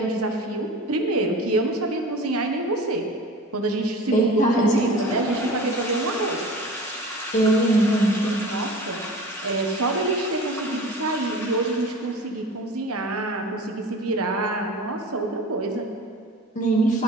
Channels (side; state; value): both; normal; correlation 0.38